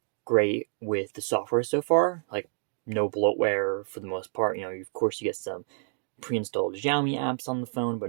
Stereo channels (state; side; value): silent; left; 59 dB below the other